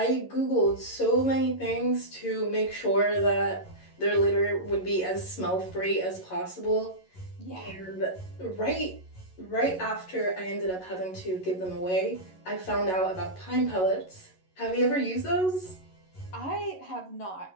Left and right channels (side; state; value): right; late; 11 ms